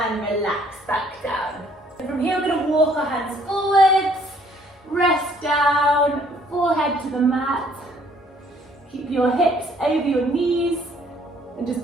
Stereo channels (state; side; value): normal; both; correlation 0.62